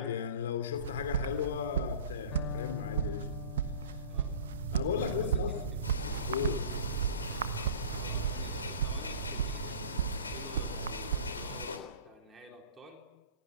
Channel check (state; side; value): inverted; both; correlation -0.41